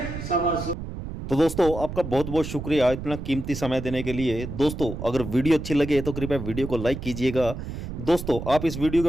125। तो दोस्तों आपका बहुत बहुत शुक्रिया इतना कीमती समय देने के लिए। दोस्तों अगर वीडियो अच्छी लगे तो कृपया वीडियो को लाइक कीजिएगा। दोस्तों आप इस वीडियो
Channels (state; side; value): noise; right; rumble, 8 dB below the sound